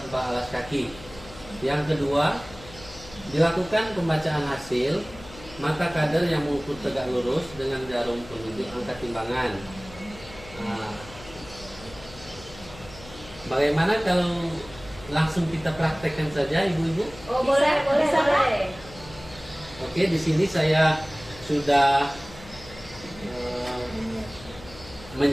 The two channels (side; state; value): left; noise; hum, 18 dB below the sound